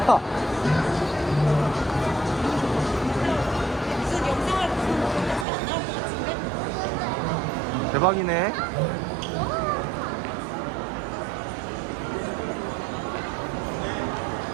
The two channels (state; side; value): drops out; left; at 5.5 s